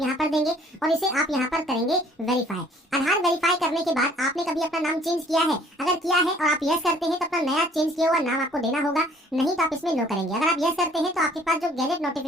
पर देंगे और इसे आप यहाँ पर करेंगे वेरीफाई। आधार वेरीफाई करने के बाद आपने कभी अपना नाम चेंज किया है, अगर किया है और आप यस करते हैं तो अपना नया चेंज किया हुआ नाम आपको देना होगा, नहीं तो आप इसमें नो करेंगे। अगर आप यस करते हैं तो आपके पास जो गैजेट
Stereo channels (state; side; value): normal; both; correlation 0.57